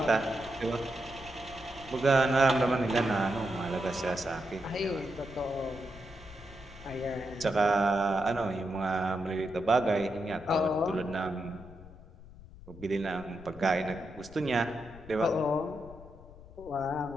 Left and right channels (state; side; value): noise; left; rumble, 18 dB below the sound